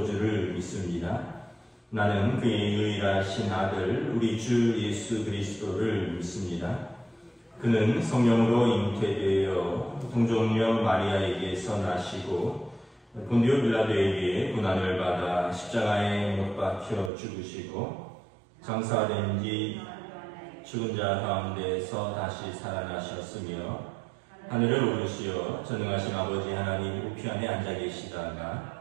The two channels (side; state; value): left; drops out; at 17.1 s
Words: 믿습니다. 나는 그의 유일하신 아들 우리 주 예수 그리스도를 믿습니다. 그는 성령으로 잉태되어 동정녀 마리아에게서 나시고 본디오 빌라도에게 고난을 받아 십자가에 못 박혀 죽으시고 장사된 뒤 죽은 자 가운데서 다시 살아나셨으며 하늘을 오르시어 전능하신 아버지 하나님 우편에 앉아